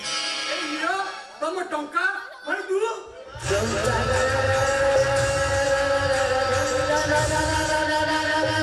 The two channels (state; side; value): identical; both; correlation 1.00